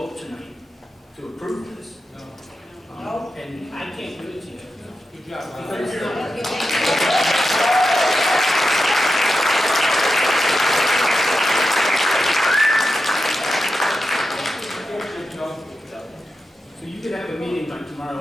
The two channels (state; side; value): normal; both; correlation 0.89